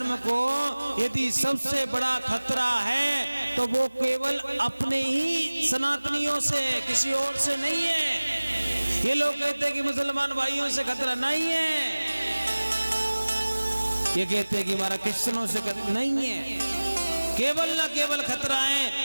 को यदि सबसे बड़ा खतरा है तो वो केवल अपने ही सनातनियों से, किसी और से नहीं है। ये लोग कहते हैं कि मुसलमान भाइयों से खतरा नहीं है, ये कहते हैं कि हमारा क्रिश्चियनों से खतरा नहीं है। केवल ना केवल खतरा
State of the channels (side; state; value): both; inverted; correlation -1.00